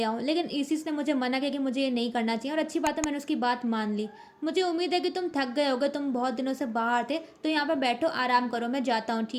आऊं, लेकिन इसिस ने मुझे मना किया कि मुझे ये नहीं करना चाहिए और अच्छी बात है मैंने उसकी बात मान ली। मुझे उम्मीद है कि तुम थक गए होगे, तुम बहुत दिनों से बाहर थे, तो यहाँ पर बैठो आराम करो, मैं जाता हूँ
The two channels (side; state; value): both; identical; correlation 1.00